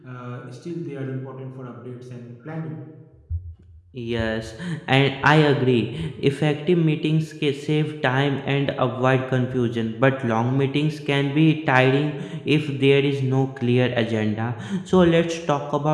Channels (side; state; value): both; identical; correlation 1.00